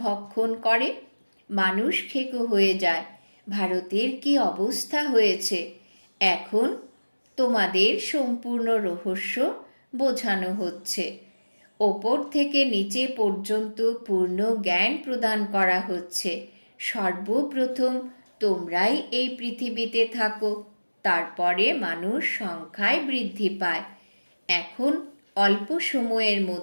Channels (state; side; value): inverted; both; correlation -1.00